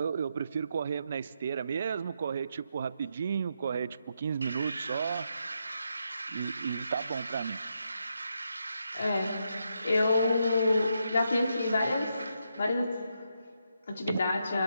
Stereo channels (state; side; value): inverted; both; correlation -0.82